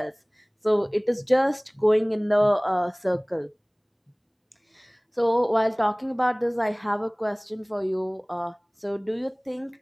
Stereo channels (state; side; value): identical; both; correlation 1.00